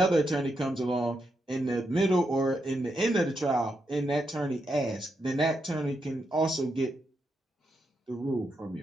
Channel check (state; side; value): normal; both; correlation 0.83